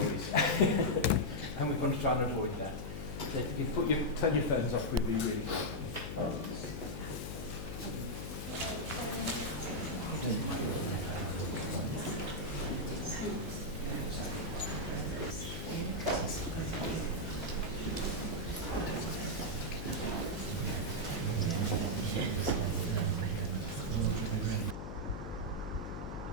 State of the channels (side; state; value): left; noise; hum, 7 dB below the sound